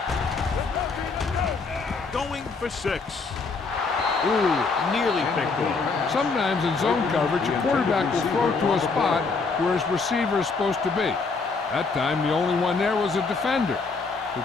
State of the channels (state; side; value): quieter; right; 4.3 dB